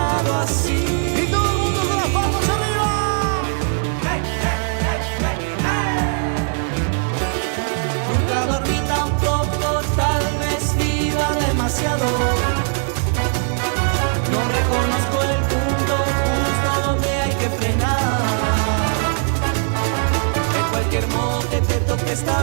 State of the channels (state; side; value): silent; left; 56 dB below the other